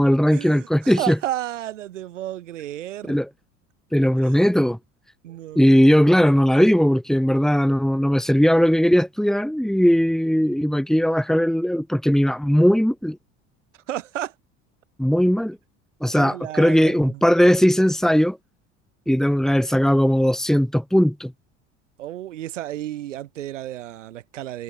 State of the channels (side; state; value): both; normal; correlation 0.98